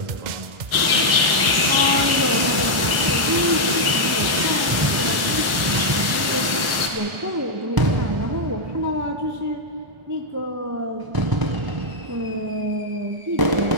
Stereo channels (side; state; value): left; late; 1.4 ms